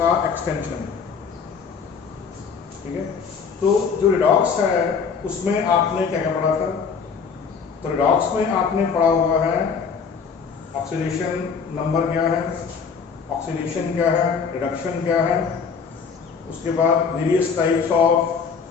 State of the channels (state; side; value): quieter; right; 5.9 dB